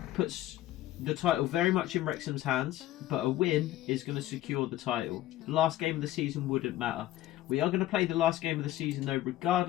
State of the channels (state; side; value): quieter; right; 14.6 dB